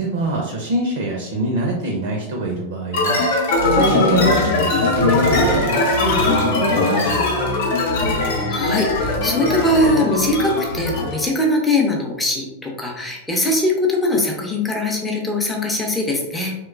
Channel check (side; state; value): both; normal; correlation 0.01